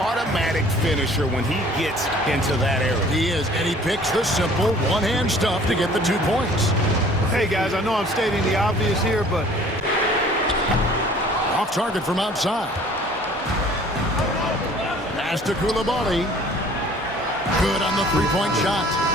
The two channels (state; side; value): normal; both; correlation 0.52